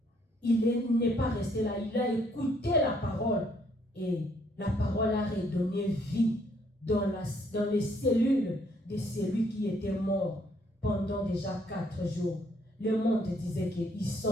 Il n'est pas resté là, il a écouté la parole. Et la parole a redonné vie dans les cellules de celui qui était mort pendant déjà 4 jours. Le monde disait qu'ils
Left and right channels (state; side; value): normal; both; correlation 0.67